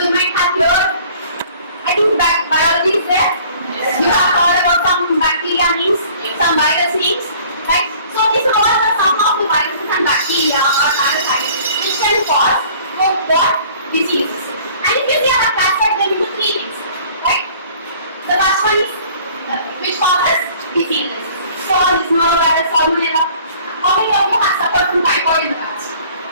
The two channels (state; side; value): inverted; both; correlation -0.52